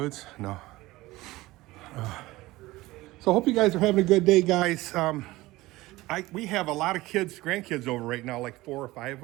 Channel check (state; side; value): quieter; left; 18.9 dB